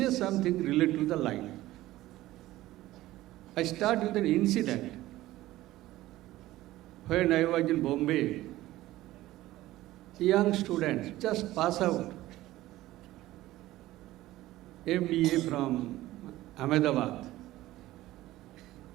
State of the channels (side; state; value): left; quieter; 16.2 dB